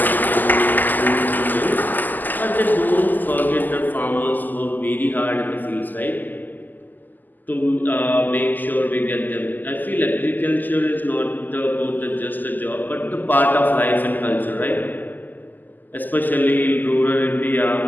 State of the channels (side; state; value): right; late; 0.086 ms